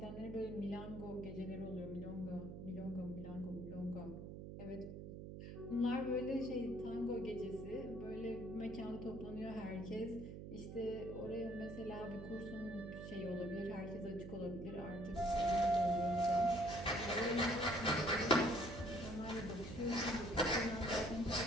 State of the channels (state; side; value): noise; right; hum, 9 dB below the sound